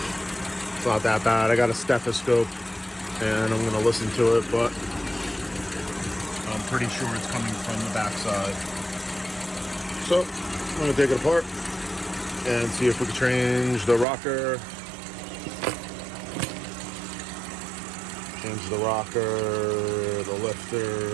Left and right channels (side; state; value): left; drops out; at 14.1 s